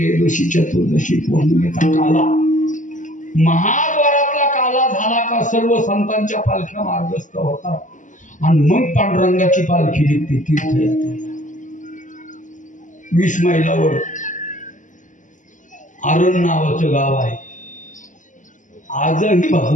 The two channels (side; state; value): right; late; 0.37 ms